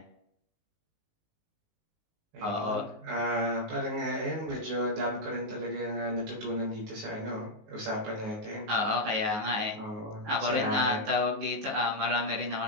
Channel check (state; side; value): late; left; 19 ms